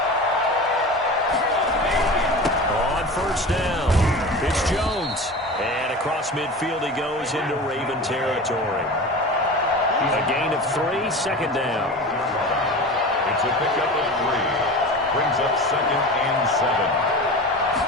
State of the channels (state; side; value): normal; both; correlation 0.32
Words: On 1st down, it's Jones. And across midfield he goes into Raven territory. A gain of 3, 2nd down. It's a pickup of 3. Brings up 2nd and 7.